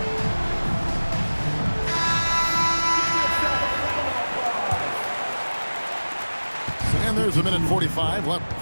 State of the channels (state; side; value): inverted; both; correlation -1.00